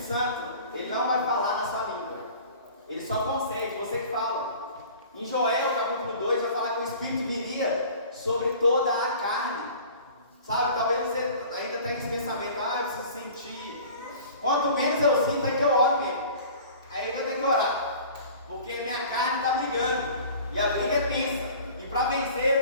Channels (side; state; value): both; inverted; correlation -0.44